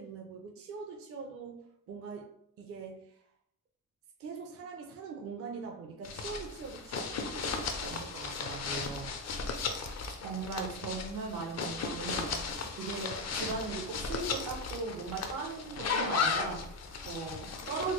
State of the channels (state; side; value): normal; both; correlation 0.08